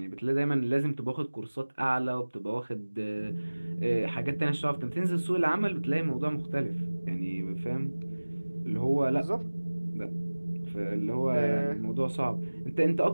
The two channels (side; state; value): both; inverted; correlation -1.00